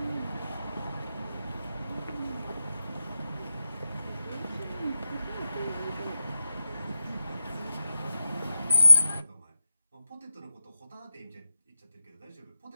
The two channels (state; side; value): inverted; both; correlation -0.93